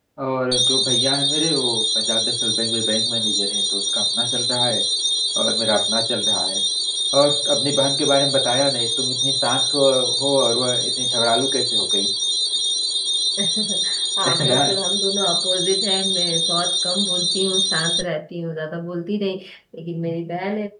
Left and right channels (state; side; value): identical; both; correlation 1.00